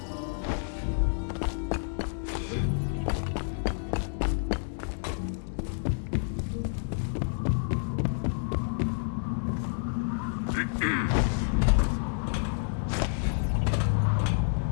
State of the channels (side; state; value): right; silent; digital silence